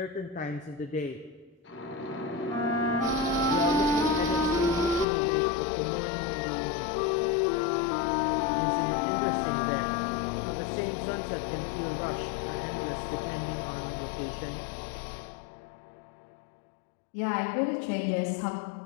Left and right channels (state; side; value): drops out; right; at 5.1 s